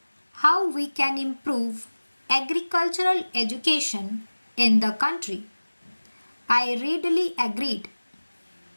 how we can improve agricultural education in the country. I readily agreed.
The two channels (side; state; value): both; inverted; correlation -1.00